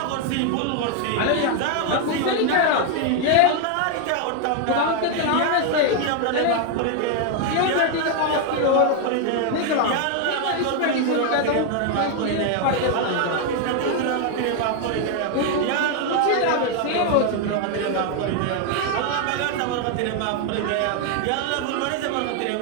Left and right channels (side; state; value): both; different; correlation 0.01